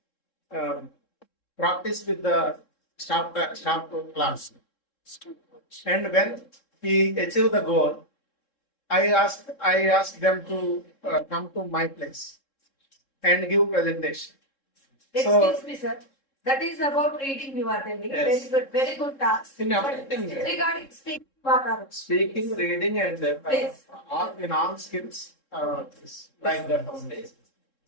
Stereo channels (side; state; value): right; late; 3.7 ms